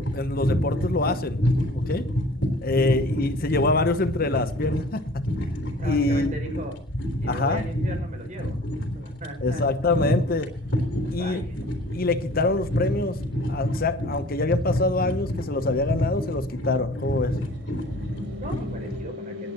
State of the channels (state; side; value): normal; both; correlation 0.47